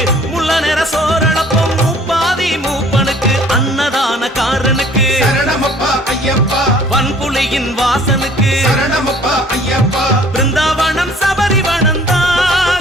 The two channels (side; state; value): both; normal; correlation 0.54